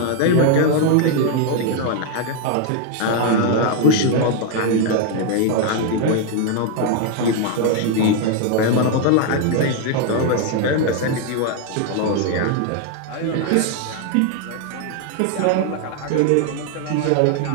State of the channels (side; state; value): both; different; correlation 0.01